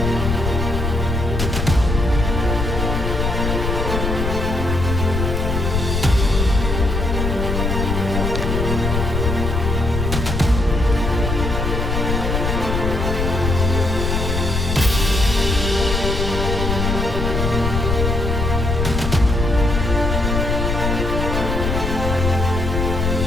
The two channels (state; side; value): noise; left; rumble, 1 dB below the sound